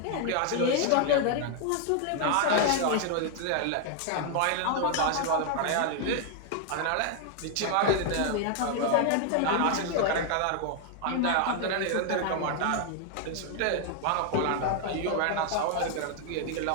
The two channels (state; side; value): different; both; correlation 0.00